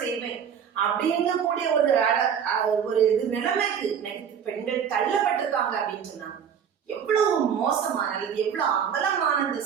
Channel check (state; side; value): quieter; left; 7.9 dB